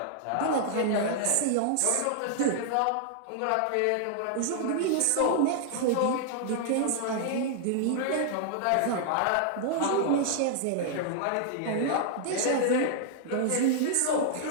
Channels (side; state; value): both; different; correlation -0.01